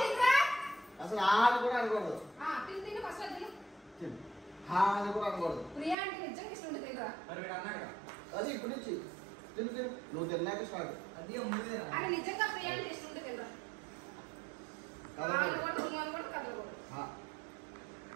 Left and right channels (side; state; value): left; drops out; at 6.0 s